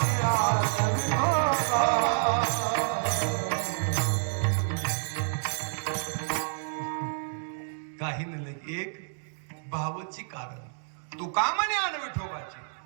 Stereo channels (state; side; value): silent; left; digital silence